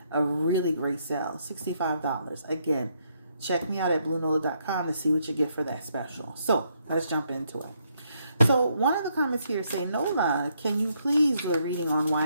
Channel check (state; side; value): inverted; both; correlation -0.74